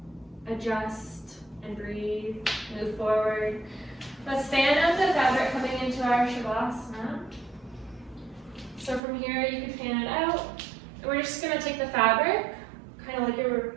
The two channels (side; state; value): left; drops out; at 9.0 s